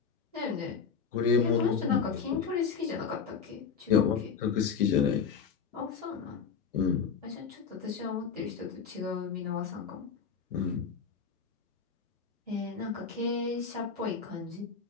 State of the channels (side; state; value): right; quieter; 6.2 dB